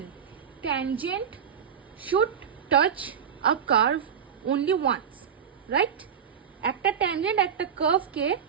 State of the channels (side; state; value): left; quieter; 7.9 dB